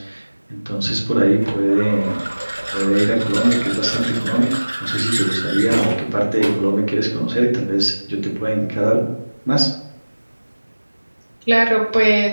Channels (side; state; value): both; inverted; correlation -1.00